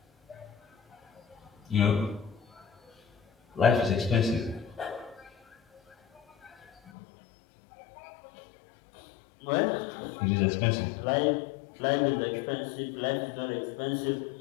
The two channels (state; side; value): drops out; right; at 6.9 s